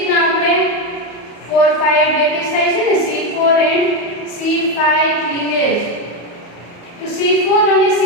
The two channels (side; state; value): right; late; 34 ms